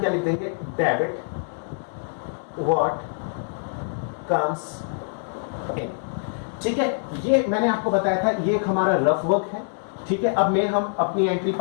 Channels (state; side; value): silent; right; digital silence